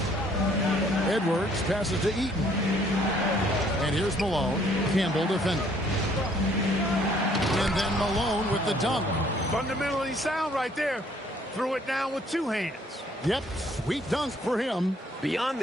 Edwards passes to Eaton. And here's Malone. Campbell defending. And then Malone with the dunk. Fundamentally sound right there. Threw it down with 2 hands. Yep, sweet dunk for him. Beyond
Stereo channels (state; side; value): normal; both; correlation 0.62